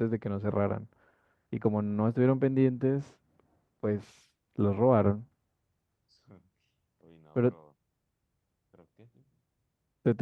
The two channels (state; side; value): identical; both; correlation 1.00